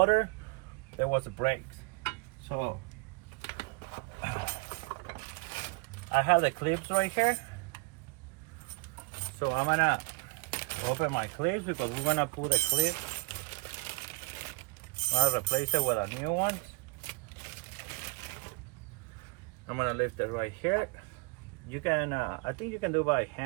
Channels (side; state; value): left; quieter; 29.6 dB